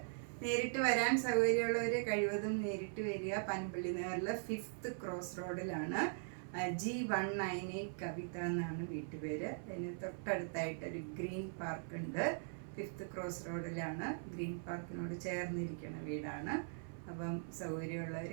നേരിട്ട് വരാൻ സൗകര്യമുള്ളവർ കഴിവതും നേരിട്ട് വരിക. പനമ്പള്ളി നഗറിൽ 5th ക്രോസ് റോഡിലാണ്. G198 കവിത എന്നാണ് വീട്ടുപേര്. അതിന് തൊട്ടടുത്തായിട്ടൊരു ഗ്രീൻ പാർക്ക് ഉണ്ട്. 5th ക്രോസ് റോഡിലാണ്. ഗ്രീൻ പാർക്കിനോട് ചേർന്നിരിക്കുന്ന വീടാണ്. അപ്പം സൗകര്യമുള്ളവർ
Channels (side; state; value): left; silent; 50 dB below the other